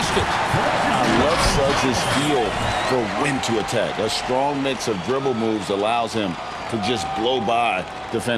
I love Suggs' feel for when to attack. A strong mix of dribble moves allows him to just blow by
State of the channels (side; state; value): both; identical; correlation 1.00